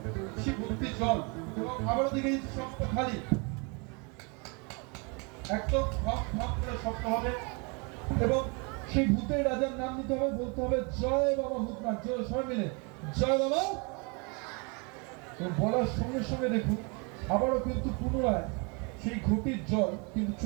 ভর্তি জল এবং আবারও দেখে দিচ্ছি শক্ত খালি, একদম ধপ ধপ করে শক্ত হবে এবং সেই ভূতের রাজার নাম নিতে হবে। বলতে হবে জয় বাবা ভূতনাথ। জয় সবাই মিলে জয় বাবা। বলার সঙ্গে সঙ্গে দেখুন আবারও কিন্তু পুনরায় সেই ঘটির জল কিন্তু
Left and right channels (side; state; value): left; quieter; 32.4 dB